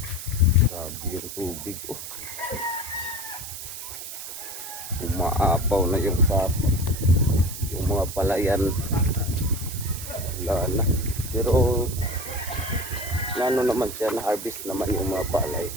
Yung tubig umaapaw na yung sapa, yung mga palayan wala na, pero ano naman siya, na harvest naman yung mga palay.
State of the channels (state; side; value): noise; right; hiss, 9 dB below the sound